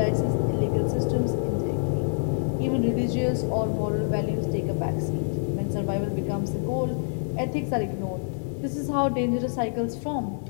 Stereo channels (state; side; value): silent; right; digital silence